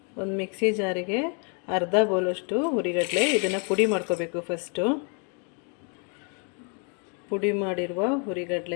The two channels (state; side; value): quieter; right; 38.1 dB